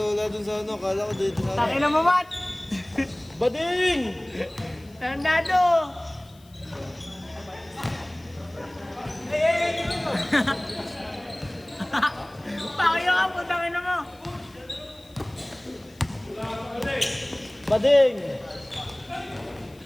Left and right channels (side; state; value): left; noise; hiss, 28 dB below the sound